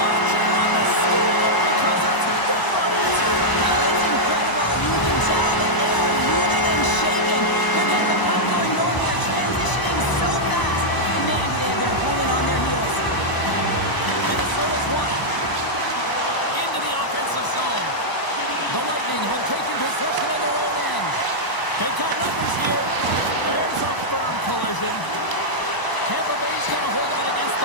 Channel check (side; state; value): right; late; 1.0 ms